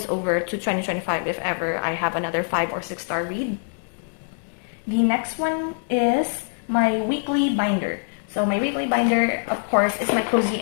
over to 2025 if ever I have another 5 or 6 star read. The next one is my weekly binder. So my weekly binder, of course, is my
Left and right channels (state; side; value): silent; right; 63 dB below the other